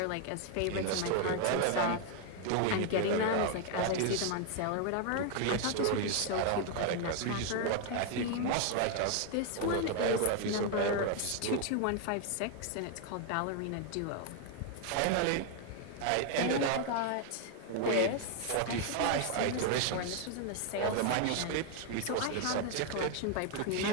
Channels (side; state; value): both; different; correlation 0.00